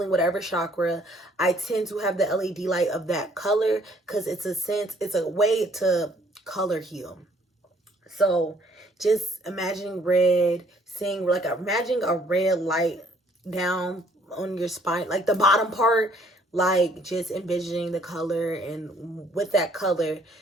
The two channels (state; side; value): normal; both; correlation 0.62